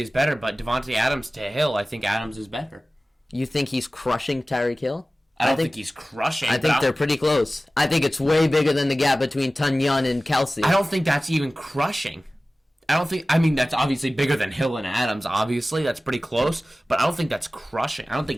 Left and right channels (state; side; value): normal; both; correlation 0.97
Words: is better, but Devontae Adams to Hill, I think Adams is better. You think he's crushing Tyreek Hill? I don't think he's crushing. I think they're pretty close. I think it's way bigger than the gap between Tunyon and Kelce. I don't think that's even crushing. That's obviously bigger than Hill and Adams, obviously. That's pretty close. But I don't think that's crushing. I don't